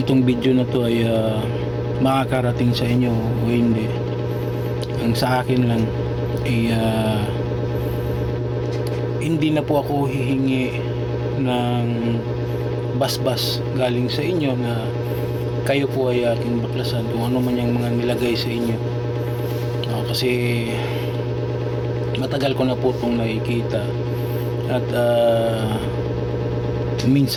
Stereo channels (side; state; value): both; identical; correlation 1.00